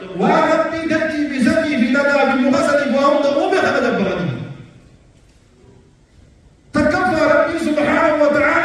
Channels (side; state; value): both; identical; correlation 1.00